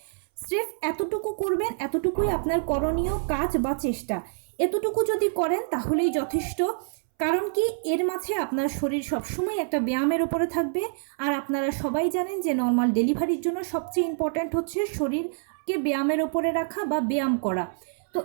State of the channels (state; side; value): silent; left; 61 dB below the other